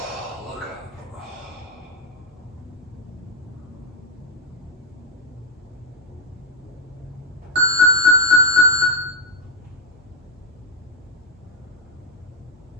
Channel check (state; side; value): normal; both; correlation 0.03